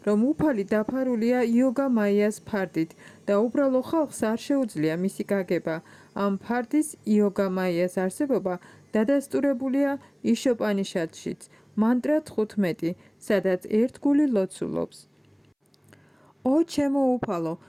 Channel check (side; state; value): both; identical; correlation 1.00